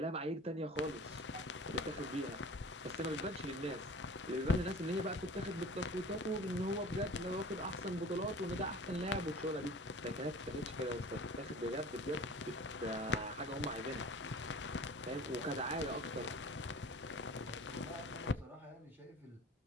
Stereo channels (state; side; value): normal; both; correlation 0.42